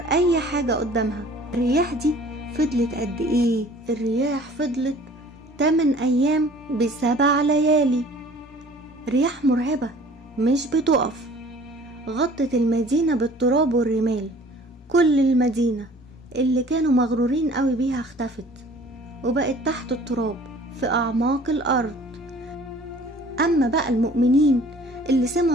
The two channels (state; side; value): normal; both; correlation 0.50